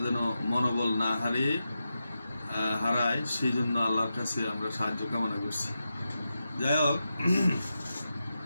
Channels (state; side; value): inverted; both; correlation -0.89